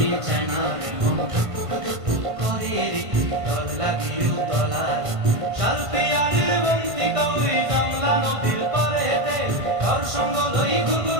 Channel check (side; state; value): left; late; 1.5 ms